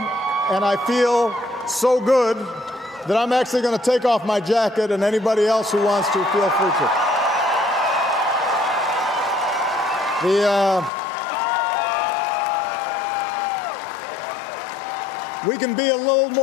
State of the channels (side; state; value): right; drops out; at 10.9 s